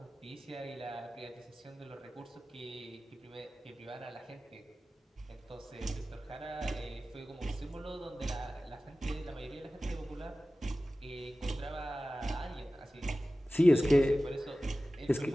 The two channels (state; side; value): normal; both; correlation 0.96